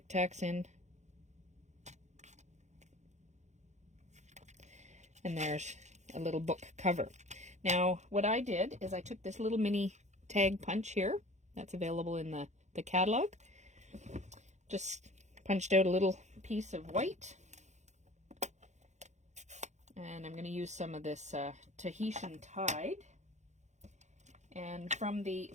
Tacs in. And there's a little book cover. Now, what I did is I took this little mini tag punch here. That's available in the catalog. Just punched out a little piece of white. And I'm going to use some of this Tahitian Tide. And from the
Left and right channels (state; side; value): late; left; 0.34 ms